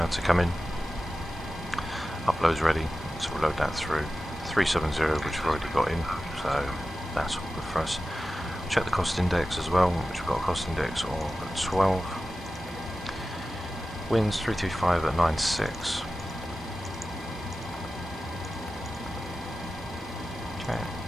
to come in. Upload's ready, so we'll load that through. 370, which we've already got in, so that's all good for us. Check the cost index as well, which we've got a cost index of 12. Winds 325 at 9.6. Okay.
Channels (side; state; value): both; normal; correlation 0.94